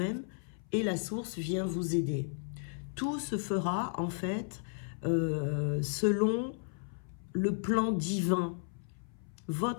et la source vient vous aider. Tout se fera en fait selon le plan divin,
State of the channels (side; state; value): right; silent; 55 dB below the other